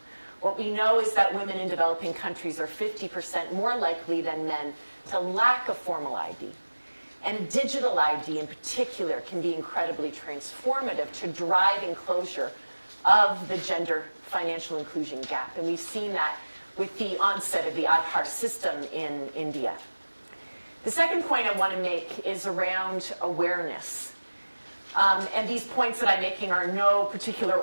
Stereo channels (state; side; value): inverted; both; correlation -1.00